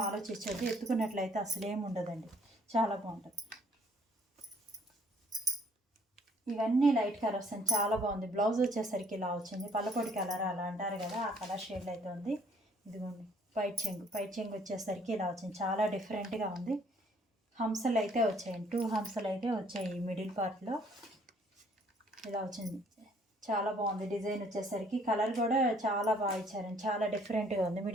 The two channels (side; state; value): both; normal; correlation 0.62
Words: ఆలోచించద్దు. ఎత్తుకున్నట్లయితే అసలు ఏమి ఉండదండి. చాలా బాగుంటుంది. ఇవన్నీ లైట్ కలర్ వస్తుంది. చాలా బాగుంది. బ్లౌజ్ వచ్చేసరికి ఇలా వచ్చింది. పల్లపొడి కలర్ అలా అంటారు కదా, ఆ కలర్ షేడ్ అయితే ఉంది. ఇదిగోండి పైట్ చెంగు వచ్చేసరికి ఇలా వచ్చింది. చాలా డిఫరెంట్గా ఉంది. హంసలు అయితే వచ్చాయి. 2 హంసలు అయితే వచ్చాయి. మిడిల్ పార్ట్లో ఇలా వచ్చింది. చాలా బాగుంది. డిజైన్ వచ్చేసరికి కలర్ కూడా చాలా బాగా ఇచ్చారండి. చాలా డిఫరెంట్గా ఉంది.